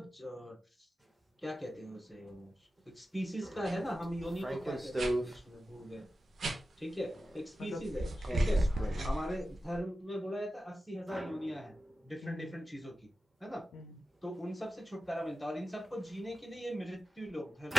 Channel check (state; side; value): normal; both; correlation 0.93